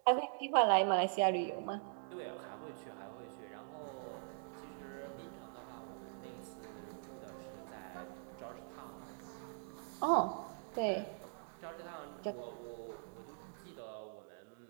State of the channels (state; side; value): silent; left; digital silence